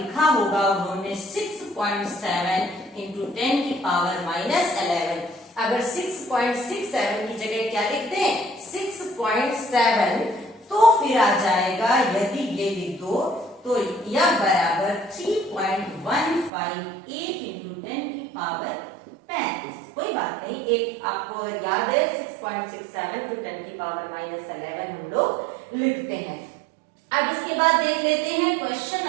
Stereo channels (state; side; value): drops out; left; at 16.5 s